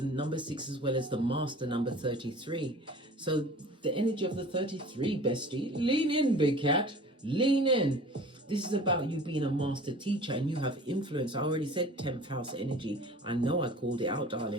6 as well as the master number 33. So the energy of the 33, bestie, lean in, big cat, lean in. This is about you being a master teacher and you have influence. I already said 10th house energy. I know I called it out,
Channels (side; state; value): both; normal; correlation 0.43